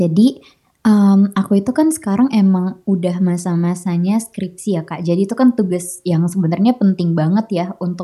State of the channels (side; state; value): both; identical; correlation 1.00